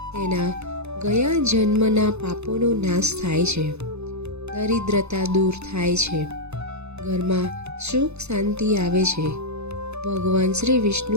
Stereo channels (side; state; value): left; late; 0.81 ms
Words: તેના ગયા જન્મના પાપોનો નાશ થાય છે, દરિદ્રતા દૂર થાય છે, ઘરમાં સુખ શાંતિ આવે છે, ભગવાન શ્રી વિષ્ણુ